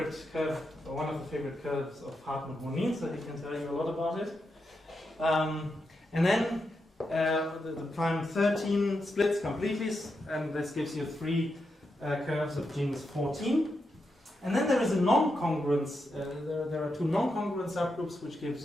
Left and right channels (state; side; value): normal; both; correlation 0.85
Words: curve, or one of the favorite curves of Hartmut Monin, so he can tell you a lot about it. And then the prime 13 splits completely, and this gives you 3 curves of genus 14. And then there is a non-congruence. There are 2 non-congruent subgroups, which give